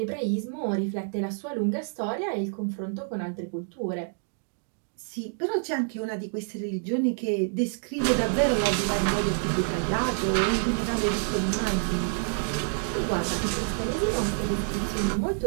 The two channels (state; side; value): silent; left; 60 dB below the other